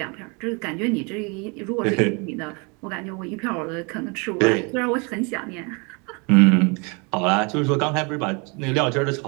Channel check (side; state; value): left; quieter; 31.6 dB